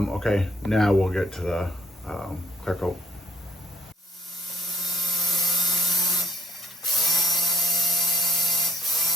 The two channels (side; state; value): both; normal; correlation 0.61